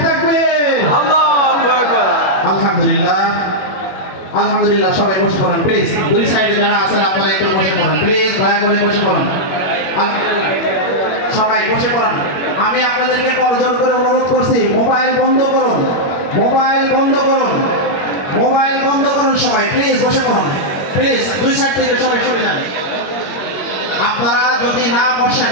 আলহামদুলিল্লাহ আলহামদুলিল্লাহ। সবাই বসে পড়েন প্লিজ। দুই সাইডে যারা আছেন আপনারা একটু বসে পড়েন প্লিজ, দয়া করে বসে পড়েন। সবাই বসে পড়েন। আমি আপনাদেরকে করজোর করে অনুরোধ করছি, মোবাইল বন্ধ করুন, মোবাইল বন্ধ করুন, মোবাইল বন্ধ করুন। সবাই প্লিজ বসে পড়ুন প্লিজ। দুই সাইড থেকে সবাই সরে যান। আপনারা যদি না বসেন,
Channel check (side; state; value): right; late; 21 ms